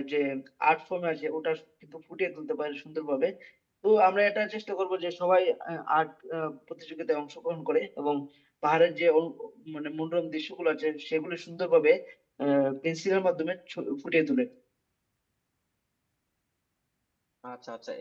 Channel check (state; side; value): identical; both; correlation 1.00